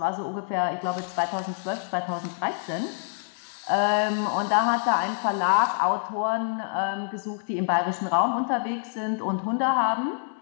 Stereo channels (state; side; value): silent; right; 61 dB below the other